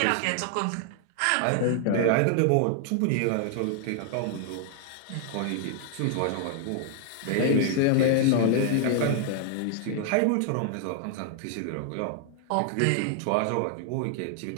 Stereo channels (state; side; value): different; both; correlation 0.00